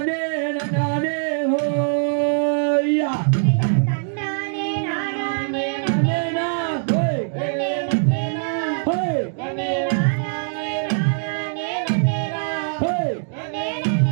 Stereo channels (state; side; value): silent; left; digital silence